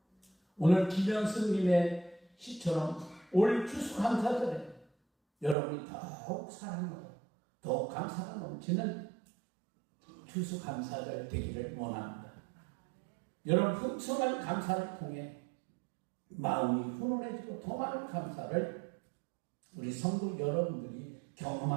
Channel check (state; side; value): drops out; left; at 5.6 s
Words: 오늘 김현승님의 시처럼 올 추수감사절에 여러분이 더욱 사랑하고 더욱 감사가 넘치는 추수감사절 되기를 원합니다. 여러분 풍성한 감사를 통해 마음이 훈훈해지고 더 많은 감사를 우리 성도 여러분들이